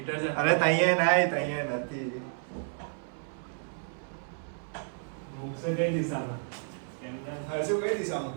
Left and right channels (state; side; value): silent; left; 57 dB below the other